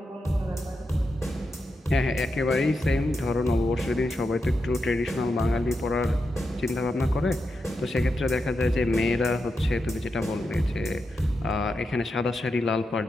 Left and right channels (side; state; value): both; normal; correlation 0.87